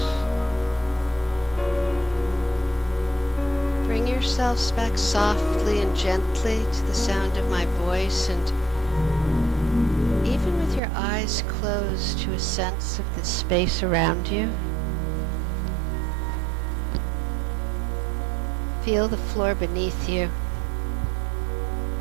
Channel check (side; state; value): left; drops out; at 10.8 s